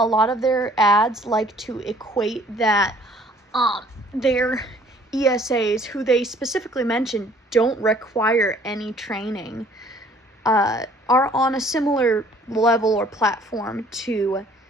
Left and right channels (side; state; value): both; normal; correlation 0.56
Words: lot of their ads like to equate that their ESAs, who they specifically mention don't require any training, are on a similar level or platform to